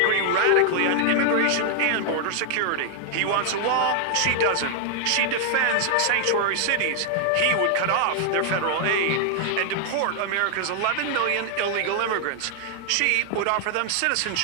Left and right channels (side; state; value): both; different; correlation 0.00